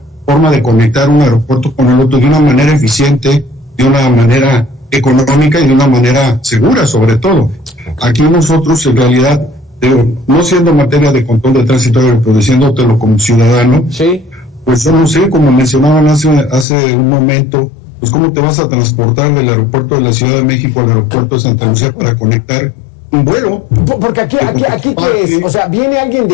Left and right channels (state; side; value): drops out; right; at 16.7 s